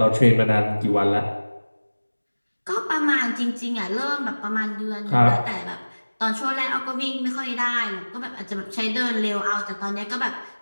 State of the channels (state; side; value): inverted; both; correlation -1.00